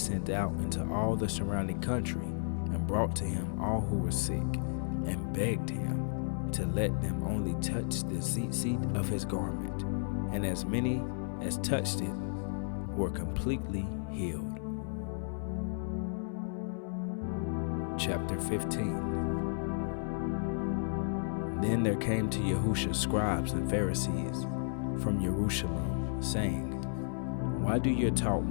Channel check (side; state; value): right; silent; 56 dB below the other